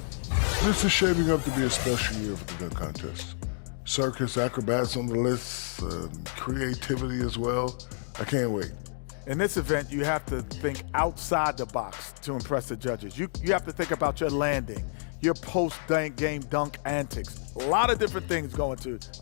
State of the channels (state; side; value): silent; right; digital silence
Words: This is shaping up to be a special year for the dunk contest. Circus, acrobats on the list, creativity as well. I can't wait. In this event, you have to think outside the box to impress the judges. You have to think about your landing, your post-game dunk antics. A lot of different things go into